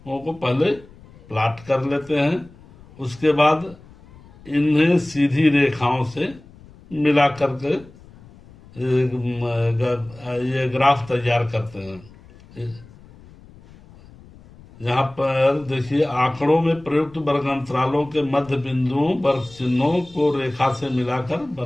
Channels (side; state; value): left; noise; rumble, 23 dB below the sound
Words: को पहले प्लॉट कर लेते हैं, उसके बाद इन्हें सीधी रेखाओं से मिला करके ये ग्राफ तैयार करते हैं। यहाँ पर देखिए आंकड़ों में प्रयुक्त वर्ग अंतरालों के मध्य बिंदुओं वर्ग चिन्हों को रेखा से मिलाकर